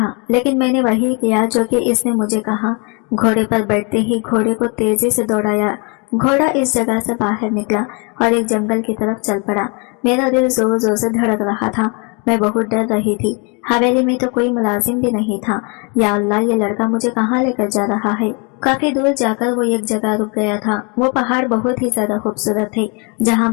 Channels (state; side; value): quieter; right; 33.2 dB